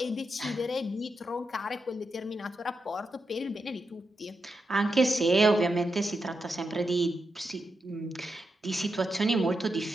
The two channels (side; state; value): both; normal; correlation 0.86